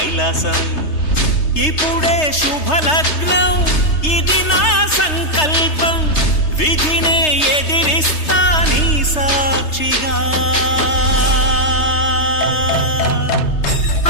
ఇప్పుడే శుభలగ్నం ఇది నా సంకల్పం, విధినే ఎదిరిస్తా నీ సాక్షిగా.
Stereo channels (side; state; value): right; late; 3.3 ms